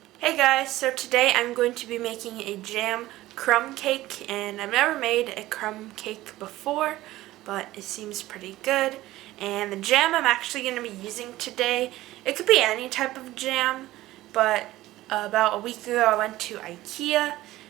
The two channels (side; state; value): left; quieter; 16.5 dB